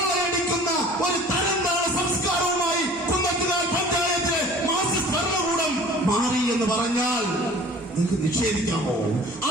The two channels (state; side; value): normal; both; correlation 0.46